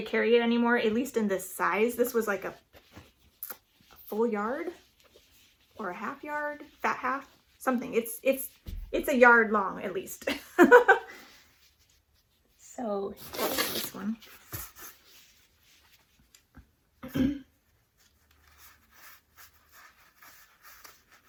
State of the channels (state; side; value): identical; both; correlation 1.00